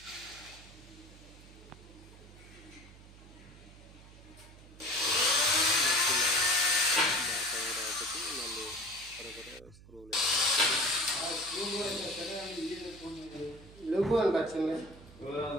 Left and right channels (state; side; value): noise; right; hum, 20 dB below the sound